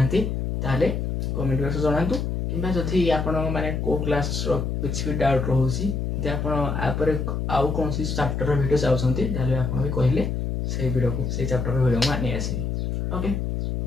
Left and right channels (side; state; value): left; noise; hum, 1 dB below the sound